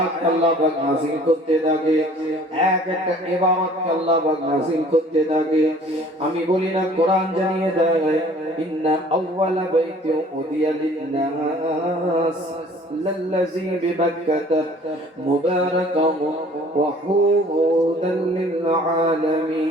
আল্লাহ পাক নাযিল করতে থাকে, এক একটা ইবাদত আল্লাহ পাক নাযিল করতে থাকে। আমি বলি না, কোরআন জানিয়ে দেয়, ইন্না আউওয়ালা বাইতিন উদিয়া লিন-নাস লাল্লাযী বিবাক্কাতা মুবারাকাও ওয়া হুদাল লিল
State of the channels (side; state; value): both; normal; correlation 0.52